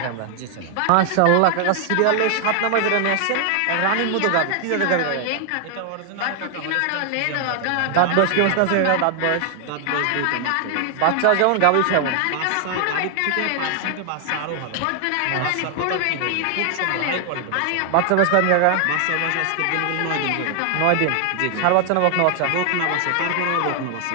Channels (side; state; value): both; different; correlation 0.00